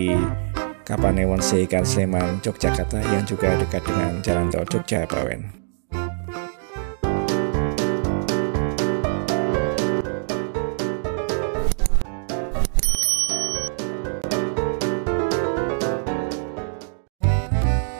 Kapanewon Seikan Sleman, Yogyakarta, yang juga dekat dengan Jalan Tol Jogja-Bawen.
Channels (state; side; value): silent; left; digital silence